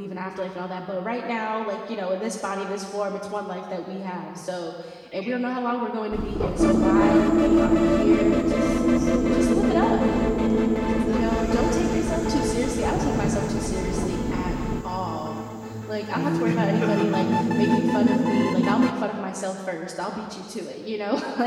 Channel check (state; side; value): identical; both; correlation 1.00